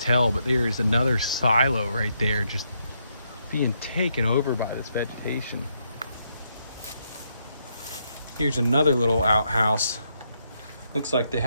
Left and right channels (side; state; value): both; inverted; correlation -0.78